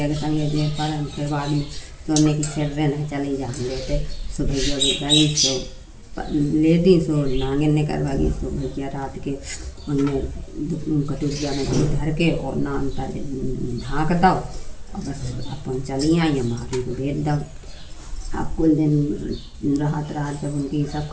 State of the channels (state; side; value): identical; both; correlation 1.00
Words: के संगे जे पर हम फिर बाद में सोने की सिर नहीं चले जा हम लेते सो भैया गई सो ले दी सो नांगे ने करवा गई सो भैया रात के उनमें कटोरिया में दूध धर के और नान पर ढाँक दो और बस अपन चली आई हमारी को भेज दो। अब कुल दिन राहत जब उनकी सब